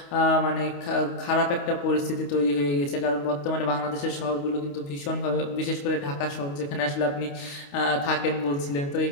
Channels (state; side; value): late; right; 28 ms